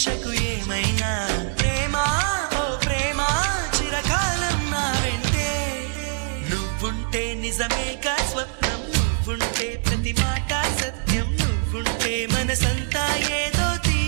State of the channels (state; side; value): silent; left; 63 dB below the other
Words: ఏమైనా ప్రేమ ఓ ప్రేమ చిరకాలం నా వెంటే నువ్వుంటే నిజమేగా స్వప్నం నువ్వుంటే ప్రతి మాట సత్యం నువ్వుంటే మనసంతా ఏదో